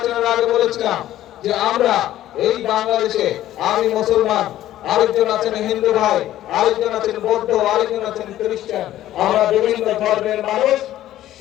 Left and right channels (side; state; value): right; quieter; 13.4 dB